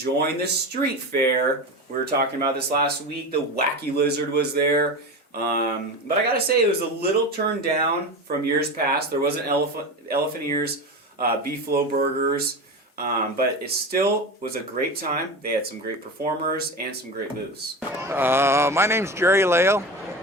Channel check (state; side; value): normal; both; correlation 0.25